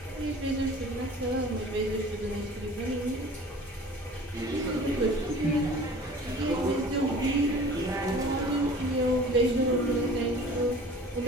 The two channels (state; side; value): normal; both; correlation 0.45